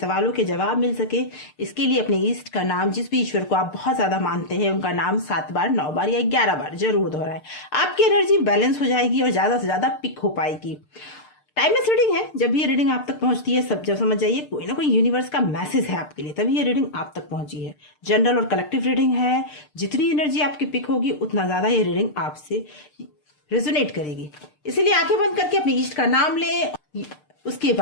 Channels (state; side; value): late; right; 6.7 ms